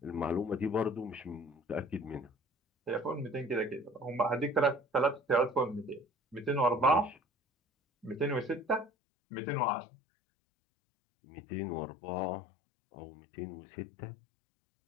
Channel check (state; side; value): drops out; right; at 8.9 s